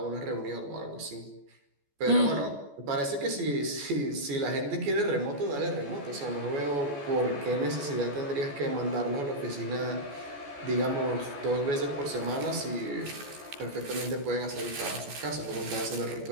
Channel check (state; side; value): late; left; 14 ms